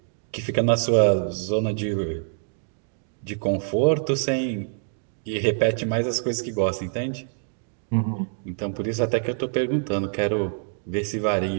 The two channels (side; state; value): left; silent; 61 dB below the other